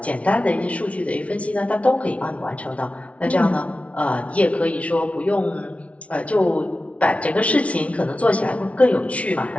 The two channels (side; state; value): right; late; 0.064 ms